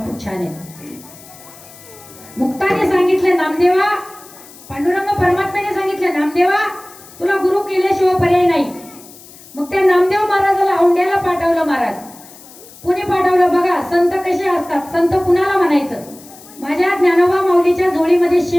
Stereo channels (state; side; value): noise; left; hiss, 21 dB below the sound